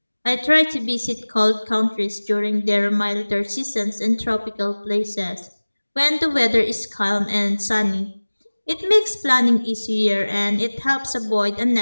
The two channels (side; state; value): both; inverted; correlation -1.00